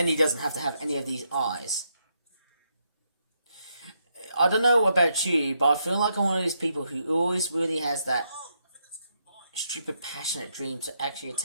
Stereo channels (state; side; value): inverted; both; correlation -0.79